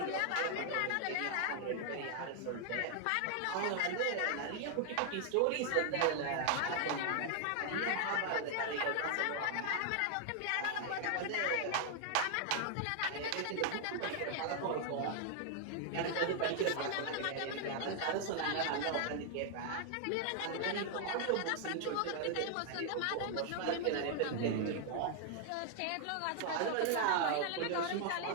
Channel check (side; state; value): both; different; correlation 0.00